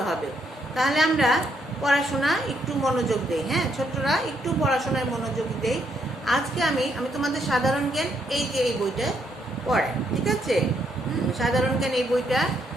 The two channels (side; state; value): both; normal; correlation 0.74